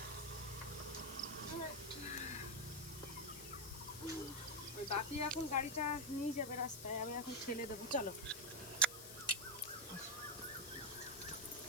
ওই বাপি এখন গাড়িটা নিয়ে যাবে রাস্তায়, আমি এখন ঠেলে দেবো। চলো।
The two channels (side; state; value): left; noise; hiss, 10 dB below the sound